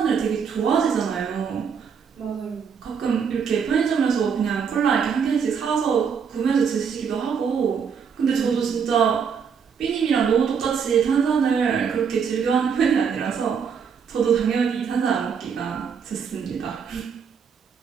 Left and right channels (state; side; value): quieter; left; 6.7 dB